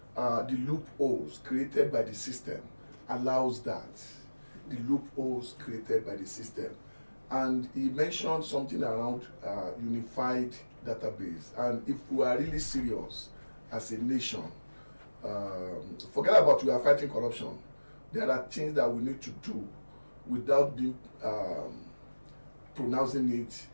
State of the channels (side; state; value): both; inverted; correlation -1.00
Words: the loopholes created by the system allows that. The loopholes created by the system. And he mentioned something around unified database. And if we are really serious as a nation, forget about we are fighting corruption. There are things that we need to do without being pronouncing it